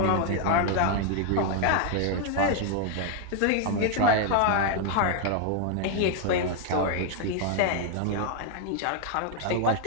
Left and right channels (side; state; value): both; different; correlation 0.00